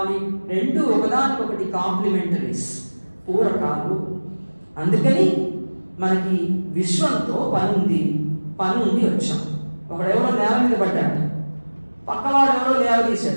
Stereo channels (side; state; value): both; inverted; correlation -1.00